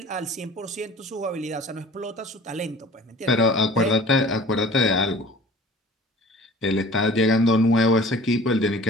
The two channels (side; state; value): both; normal; correlation 0.45